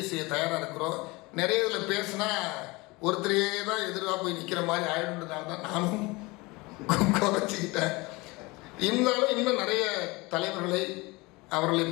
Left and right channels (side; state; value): right; quieter; 24.0 dB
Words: செய்ய தயாராக இருக்கிறோம். நிறைய இதில் பேசுனா ஒருத்தரையே தான் எதிராக போய் நிற்கிற மாதிரி ஆயிடுன்றதுனால தான் நானும் குறைச்சிக்கிட்டேன். இருந்தாலும் இன்னும் நிறைய தலைவர்களை அவர்களை